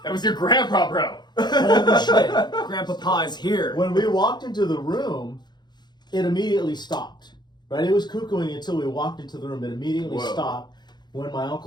That was your grandpa, bro. Holy shit. Grandpa Pa is here. When we walked into the room, it immediately stopped. Right? It was cuckooing until we walked into the room. It immediately stopped. When my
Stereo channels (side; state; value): right; late; 0.21 ms